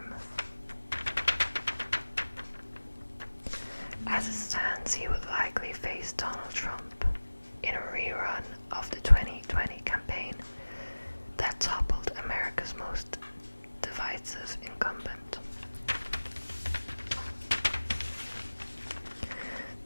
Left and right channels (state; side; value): inverted; both; correlation -1.00